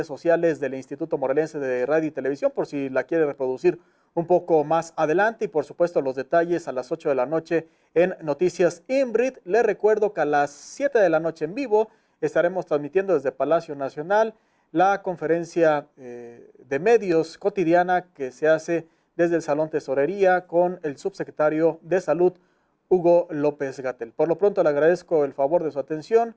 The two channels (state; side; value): identical; both; correlation 1.00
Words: sociales del Instituto Morelense de Radio y Televisión, por si la quiere reproducir un poco más adelante, y por supuesto los detalles a las 8 de la noche en Noticias INBRID. Les recuerdo que a las 7 de la noche en vivo estaremos transmitiendo desde Palacio Nacional la conferencia de medios cotidiana que se hace desde el Salón Tesorería con el subsecretario de Salud, Hugo López-Gatell. Por lo pronto le agradezco el favor de su atención.